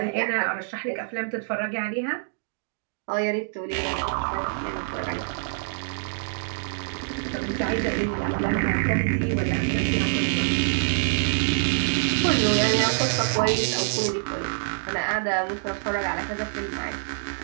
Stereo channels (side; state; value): left; silent; digital silence